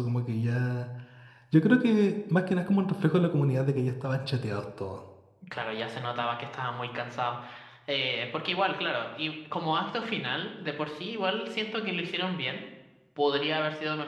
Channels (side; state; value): both; identical; correlation 1.00